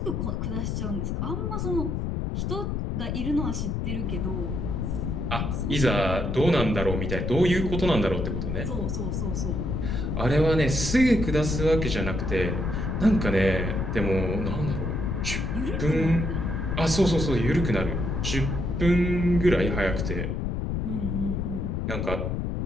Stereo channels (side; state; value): left; noise; rumble, 1 dB below the sound